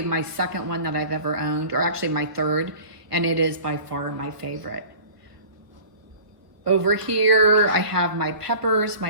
my second one that I've ever owned, or actually my third, and it is by far my favorite. Over here, I have my peppers, my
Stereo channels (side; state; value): left; late; 1.1 ms